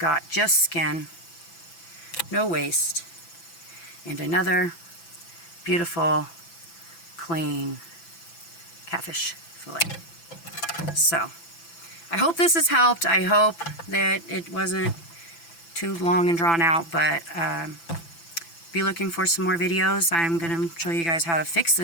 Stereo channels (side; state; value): right; late; 6.0 ms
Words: just skin, no waste, and another beautiful, clean catfish fillet. So, I hope this has helped. I hope that it wasn't too long and drawn out, but be looking for some more videos. I'm going to show you guys how to fix